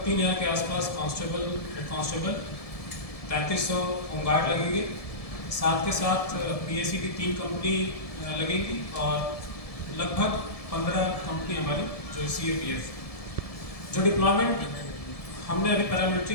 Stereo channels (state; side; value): late; right; 1.7 ms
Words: 3000 के आसपास कांस्टेबल, हेड कांस्टेबल, 3300 होमगार्ड लगेंगे। साथ के साथ पीएसी की 3 कंपनी लगेंगी और लगभग 15 कंपनी हमारी जो सीएपीएफ। जो डिप्लॉयमेंट हमने अभी